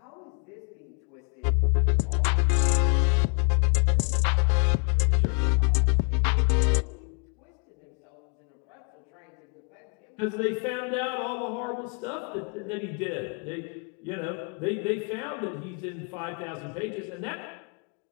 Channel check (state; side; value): quieter; right; 38.3 dB